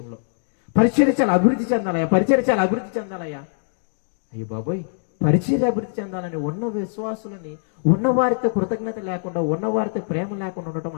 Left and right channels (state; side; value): silent; right; digital silence